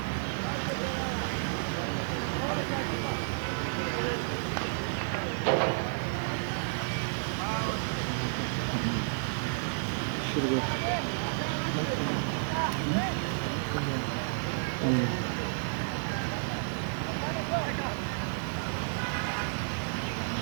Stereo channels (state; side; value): silent; left; digital silence